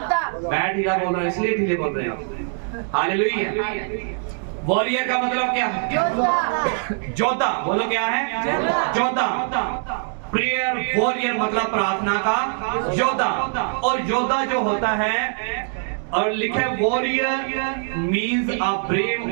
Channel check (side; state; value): left; silent; 61 dB below the other